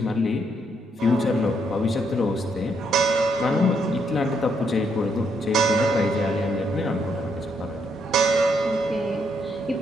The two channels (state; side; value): normal; both; correlation 0.75